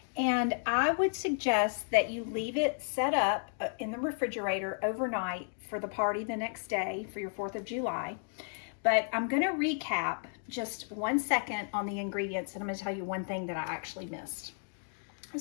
And I would suggest that you leave it set up in the refrigerator overnight for the party the next day for your 4th of July. But I'm going to recap just 1 second on the ingredients, and I'm going to tell you one thing that I actually missed.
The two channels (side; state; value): right; silent; digital silence